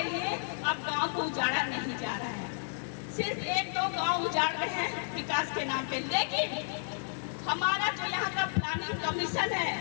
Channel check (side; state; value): right; silent; digital silence